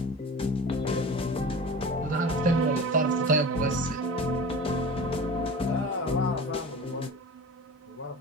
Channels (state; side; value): normal; both; correlation 0.35